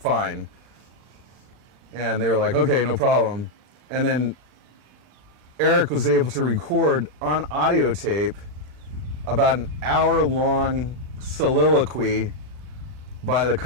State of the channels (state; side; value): late; left; 39 ms